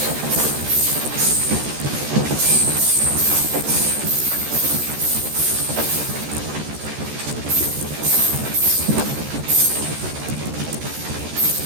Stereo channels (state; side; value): late; left; 14 ms